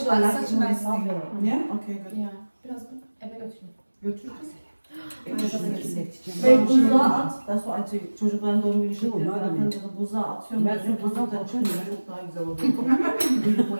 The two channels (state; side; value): inverted; both; correlation -1.00